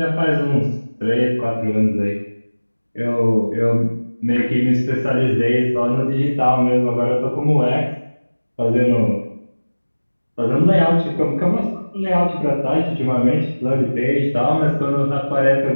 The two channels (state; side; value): inverted; both; correlation -1.00